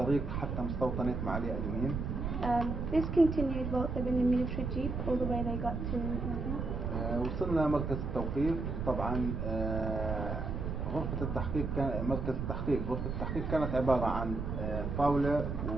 حتى مستوطنة معالي أدومين. This continued whilst they were in the military jeep all the way they got to وصلنا مركز التوقيف. طبعا غرفة التحقيق مركز التحقيق غرفة التحقيق كانت عبارة عن طاولة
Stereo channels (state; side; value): noise; right; rumble, 3 dB below the sound